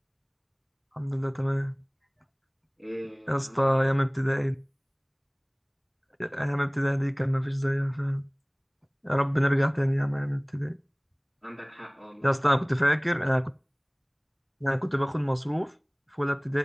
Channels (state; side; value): identical; both; correlation 1.00